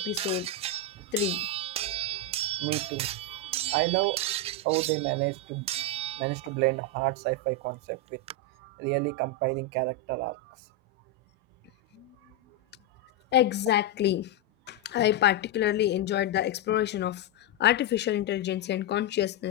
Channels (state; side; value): normal; both; correlation 0.03